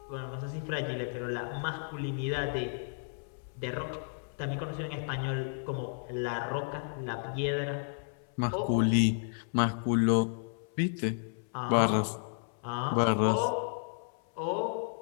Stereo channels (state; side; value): silent; right; 56 dB below the other